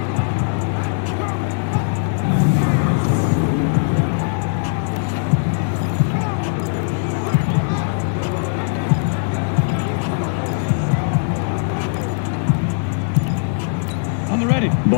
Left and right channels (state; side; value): silent; right; digital silence